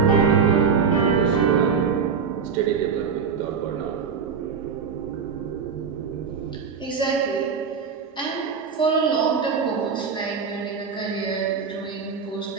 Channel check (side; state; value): left; quieter; 6.1 dB